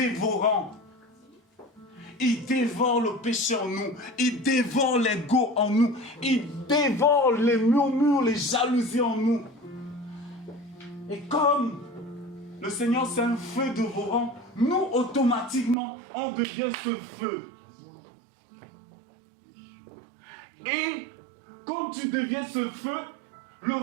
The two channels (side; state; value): left; drops out; at 15.8 s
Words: Il dévore le péché en nous. Il dévore l'ego en nous. Il dévore les murmures, les jalousies en nous. Et comme le Seigneur c'est un feu dévorant, nous automatiquement on devient ce feu. Et comme tu deviens ce feu, le